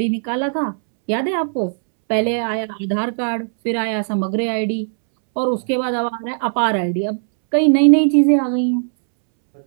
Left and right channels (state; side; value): silent; left; 67 dB below the other